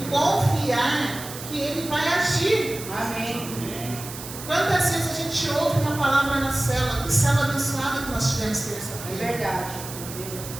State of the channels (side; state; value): right; noise; hiss, 11 dB below the sound